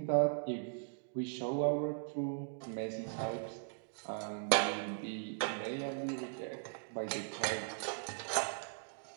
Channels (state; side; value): silent; left; digital silence